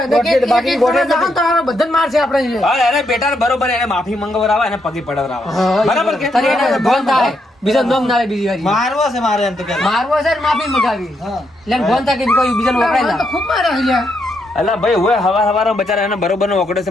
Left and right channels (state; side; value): normal; both; correlation 0.78